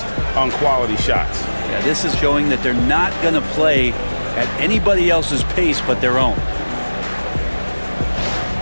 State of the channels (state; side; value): inverted; both; correlation -1.00